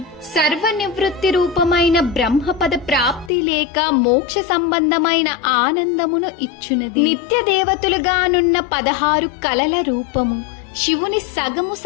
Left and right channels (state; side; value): drops out; right; at 3.3 s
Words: సర్వనివృత్తి రూపమైన బ్రహ్మపద ప్రాప్తి లేక మోక్ష సంబంధమైన ఆనందమును ఇచ్చునది. నిత్య దేవతలుగానున్న 16 కలల రూపము శివుని సగము